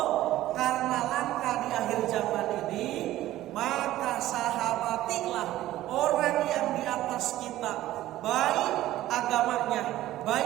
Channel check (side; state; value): left; quieter; 14.8 dB